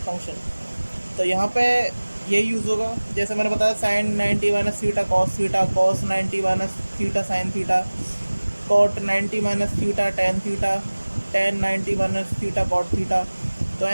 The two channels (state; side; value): inverted; both; correlation -1.00